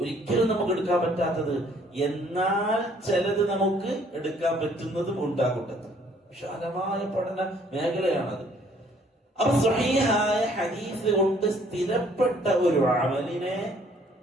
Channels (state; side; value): normal; both; correlation 0.61